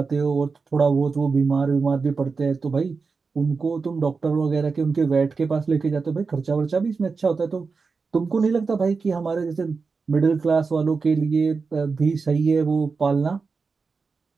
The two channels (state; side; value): quieter; left; 4.7 dB